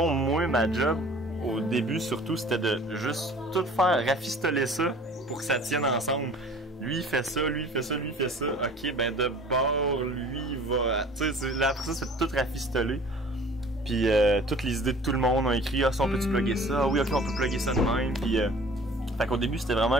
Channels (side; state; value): both; normal; correlation 0.47